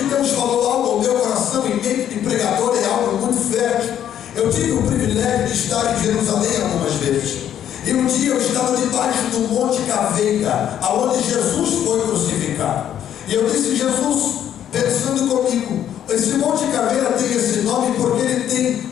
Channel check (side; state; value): right; quieter; 10.3 dB